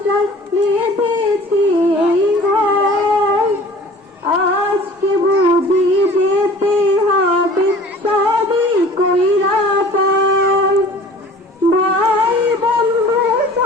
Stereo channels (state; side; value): normal; both; correlation 0.46